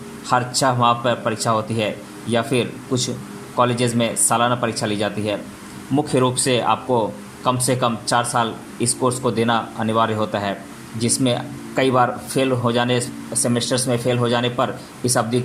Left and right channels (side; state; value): both; identical; correlation 1.00